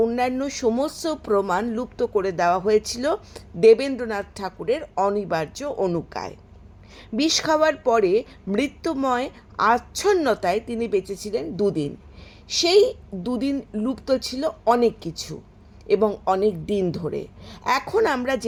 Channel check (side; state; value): both; identical; correlation 1.00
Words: অন্যান্য সমস্ত প্রমাণ লুপ্ত করে দেওয়া হয়েছিল দেবেন্দ্রনাথ ঠাকুরের অনিবার্য অনুজ্ঞায়। বিষ খাওয়ার পরে মৃত্যুময় আচ্ছন্নতায় তিনি বেঁচেছিলেন দুদিন। সেই দুদিন লুপ্ত ছিল অনেক কিছু এবং অনেক দিন ধরে। এখন আমরা